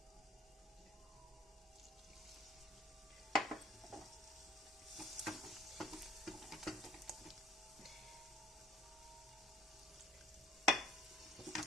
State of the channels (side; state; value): both; normal; correlation 0.53